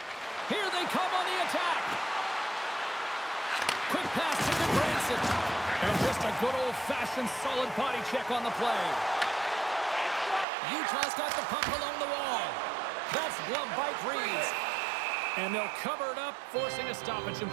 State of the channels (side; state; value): left; drops out; at 10.5 s